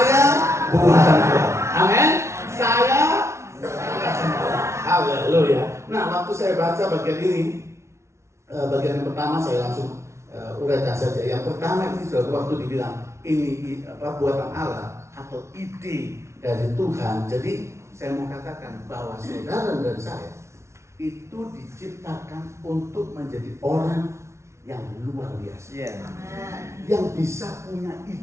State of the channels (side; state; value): left; late; 0.13 ms